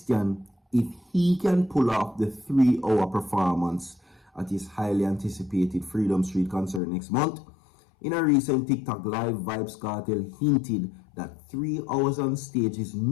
if he can pull off the 3-hour performance at his highly anticipated Freedom Street concert next month, in a recent TikTok live, Vybz Kartel hinted that 3 hours on stage is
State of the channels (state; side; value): drops out; right; at 6.8 s